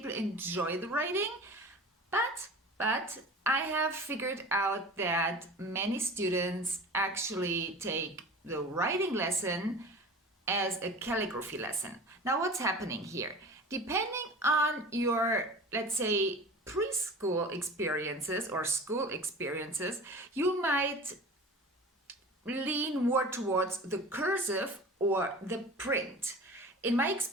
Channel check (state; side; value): normal; both; correlation 0.37